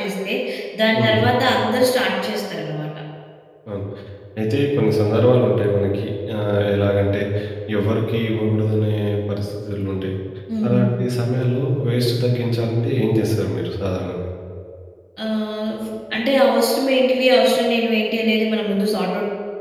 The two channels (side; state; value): both; identical; correlation 1.00